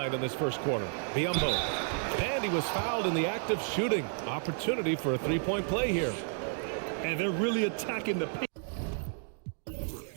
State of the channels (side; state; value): left; silent; 57 dB below the other